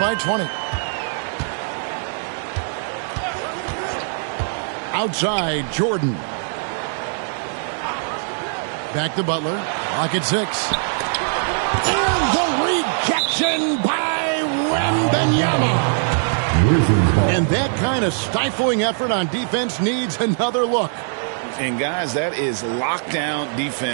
20. Outside, Jordan. Back to Butler. Lock at 6. And the rejection by Wembanyama. And that kind of stifling effort on defense needs another look. And guys, that is lockdown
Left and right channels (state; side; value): silent; left; digital silence